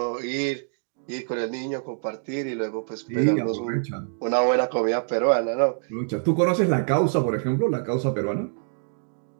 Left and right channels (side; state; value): left; silent; digital silence